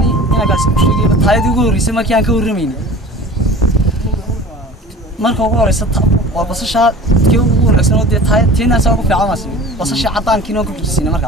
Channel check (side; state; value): both; normal; correlation 0.41